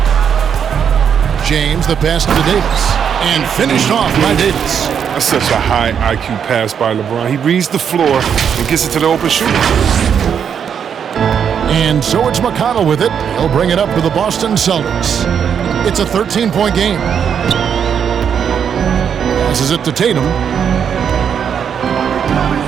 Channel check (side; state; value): left; quieter; 7.7 dB